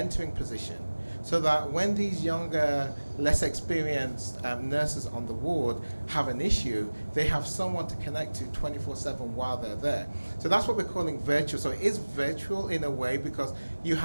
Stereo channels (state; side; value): inverted; both; correlation -1.00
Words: position so that when these younger, less experienced nurses on the ward have an issue, they have someone to connect to 24/7 while they're there. So that's what we're calling virtual. So it is virtual in a way because you